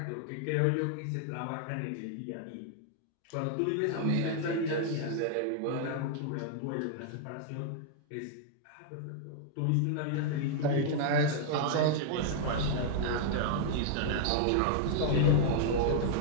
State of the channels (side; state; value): both; different; correlation -0.01